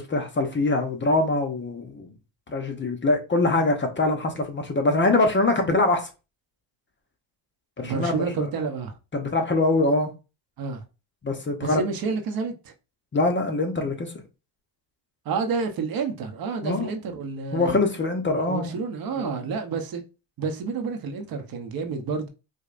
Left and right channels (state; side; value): normal; both; correlation -0.01